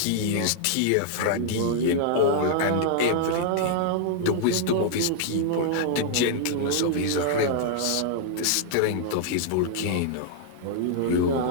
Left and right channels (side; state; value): both; different; correlation -0.01